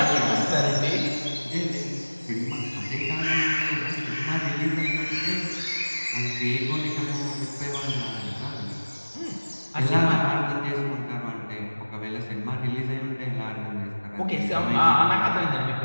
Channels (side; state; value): both; inverted; correlation -1.00